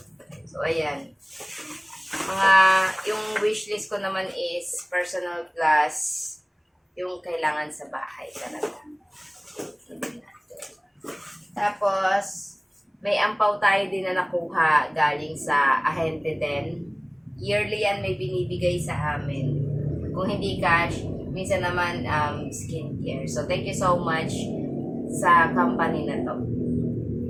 So, ayan. Yung wishlist ko naman is personal plus yung kailangan sa bahay talaga. Tapos, may ampaw tayo din na nakuha galing sa ahente din. Yearly yan may binibigay sa amin. Kung hindi cash, minsan naman skincare. So, thank you so much sa company na to.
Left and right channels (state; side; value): identical; both; correlation 1.00